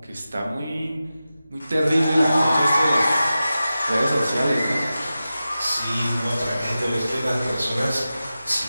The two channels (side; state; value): both; inverted; correlation -0.94